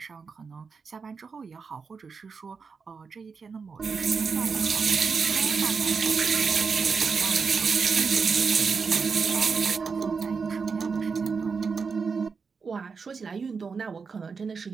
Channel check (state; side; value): quieter; left; 5.3 dB